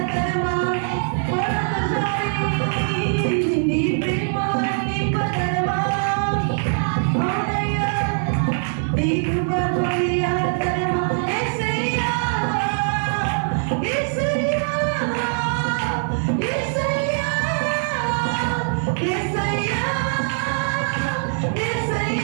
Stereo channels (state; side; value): silent; left; digital silence